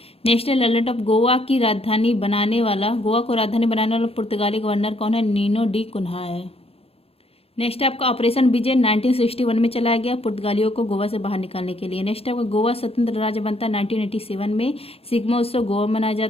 नेशनल आइलैंड ऑफ गोवा की राजधानी बनाने वाला गोवा को राजधानी बनाने वाला पुर्तगाली गवर्नर कौन है? नीनो डी कुन्हा है। नेक्स्ट आपका ऑपरेशन विजय 1961 में चलाया गया पुर्तगालियों को गोवा से बाहर निकालने के लिए। नेक्स्ट आपका गोवा स्वतंत्र राज्य बनता है 1987 में। सिग्मा उत्सव गोवा मनाया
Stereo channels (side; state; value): right; late; 0.28 ms